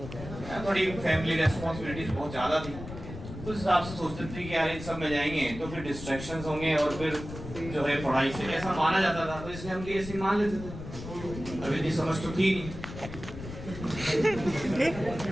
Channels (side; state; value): left; noise; rumble, 11 dB below the sound